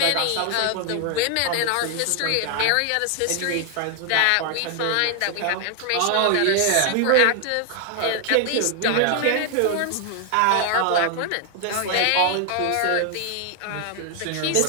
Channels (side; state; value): both; different; correlation 0.00